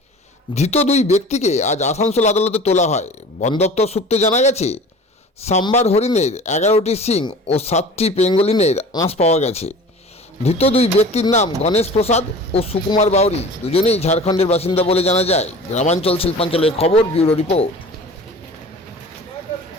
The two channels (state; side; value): normal; both; correlation 0.41